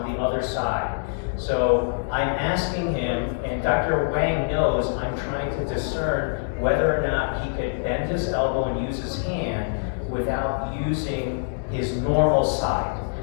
the other side. So I'm asking him, and Dr. Wang knows I'm trying to discern whether or not he could bend his elbow and use his hand without using his normal side.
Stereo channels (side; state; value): right; silent; digital silence